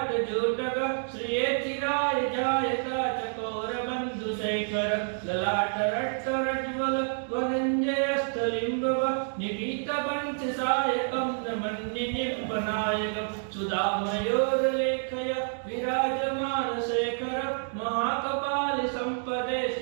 श्रिये चिराय जायता चकोरबन्धुशेखर ललाटरट्टरज्ज्वल वनञ्जयस्थलिम्बव निपीतपञ्चसायकं नमन्निनिर्पनायकं सुधामयोर्लेखय विराजमानशेखर महाकपालिसम्पदे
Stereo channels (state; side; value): silent; left; digital silence